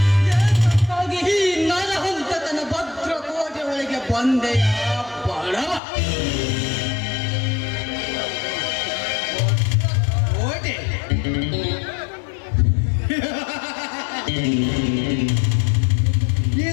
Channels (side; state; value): right; drops out; at 5.8 s